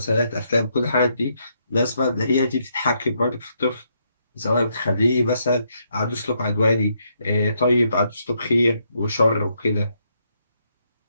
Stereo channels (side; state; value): both; inverted; correlation -0.76